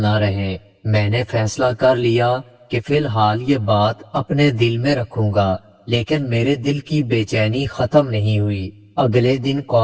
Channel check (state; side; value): identical; both; correlation 1.00